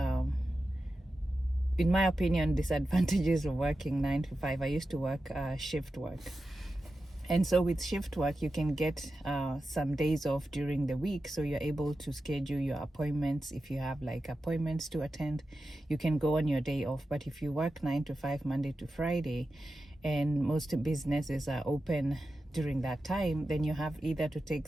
in my opinion, disadvantages of working 9 to 5. I used to work shift work. And so with shift work, you can get some days off during the week. So you're able to schedule your appointments. If you have like appointments to attend, you can go on your day off. But if you work 9 to 5, Monday to Friday, and most businesses are open during that time, then you have either to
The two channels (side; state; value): both; normal; correlation 0.92